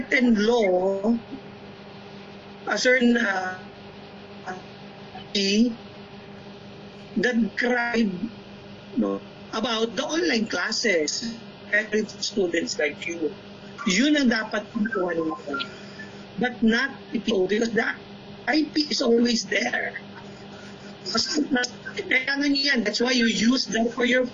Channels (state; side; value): identical; both; correlation 1.00